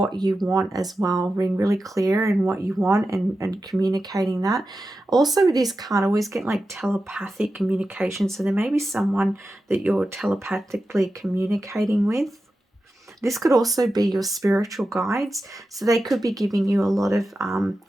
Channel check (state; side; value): normal; both; correlation 0.92